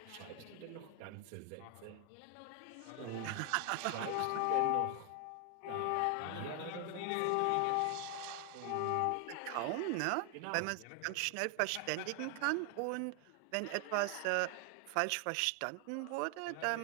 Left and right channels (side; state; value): both; different; correlation 0.00